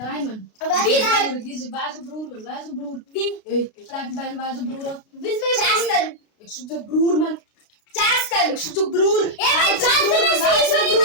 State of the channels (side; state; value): right; late; 33 ms